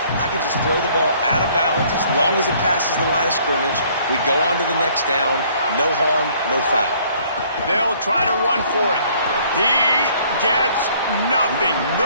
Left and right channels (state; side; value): inverted; both; correlation -0.60